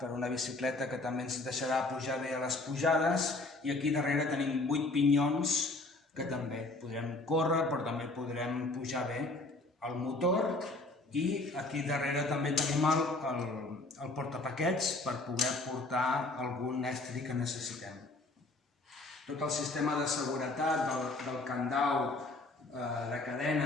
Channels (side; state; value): right; quieter; 3.0 dB